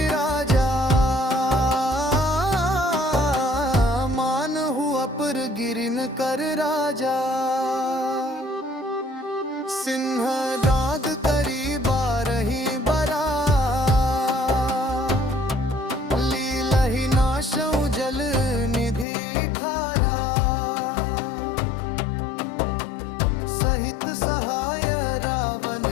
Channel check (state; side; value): drops out; right; at 19.1 s